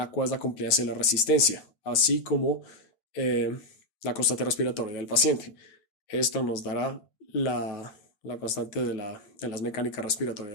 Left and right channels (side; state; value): right; late; 9.1 ms